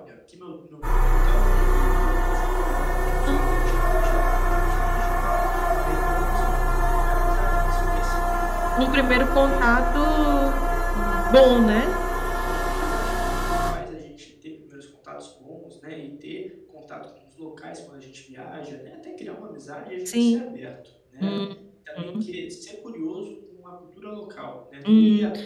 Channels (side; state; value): both; identical; correlation 1.00